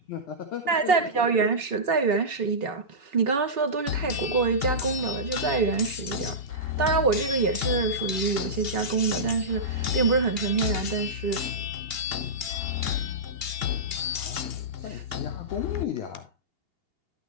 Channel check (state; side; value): late; left; 2.8 ms